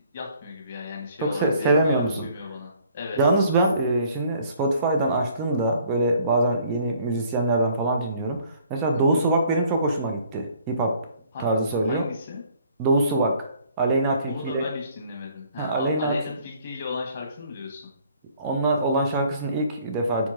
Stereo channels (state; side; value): inverted; both; correlation -0.58